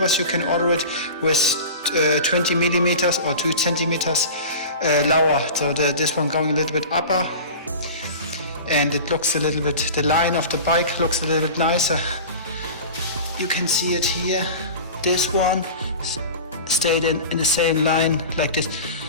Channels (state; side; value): inverted; both; correlation -0.34